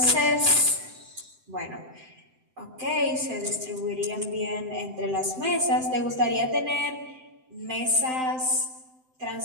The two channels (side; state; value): left; late; 7.8 ms